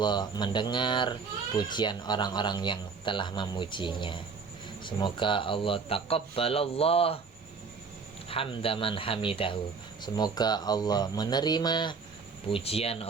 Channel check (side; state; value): left; quieter; 5.1 dB